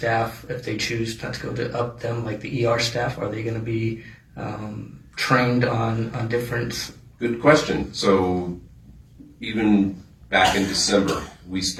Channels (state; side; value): identical; both; correlation 1.00